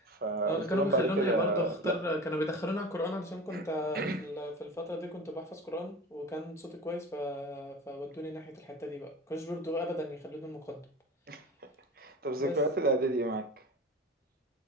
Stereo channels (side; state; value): both; normal; correlation 0.34